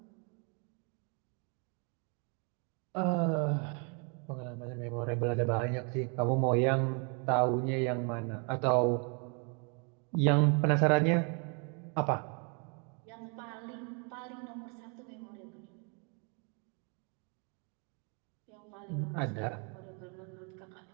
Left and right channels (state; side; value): quieter; left; 36.5 dB